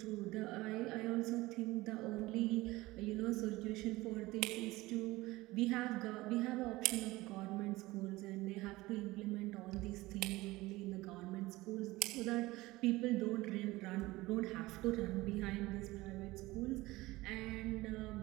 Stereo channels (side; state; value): left; quieter; 19.6 dB